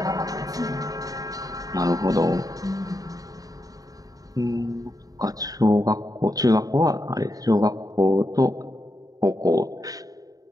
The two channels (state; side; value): late; left; 0.18 ms